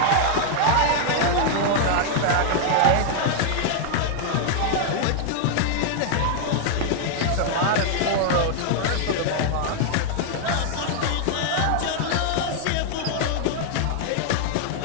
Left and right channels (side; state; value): both; different; correlation -0.01